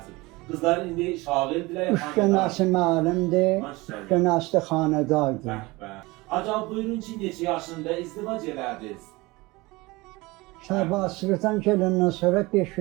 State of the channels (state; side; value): quieter; left; 22.4 dB